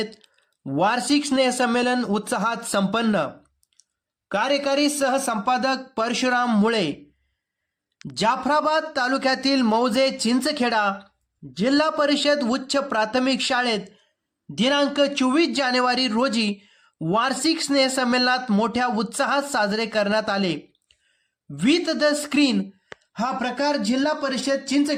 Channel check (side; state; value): both; identical; correlation 1.00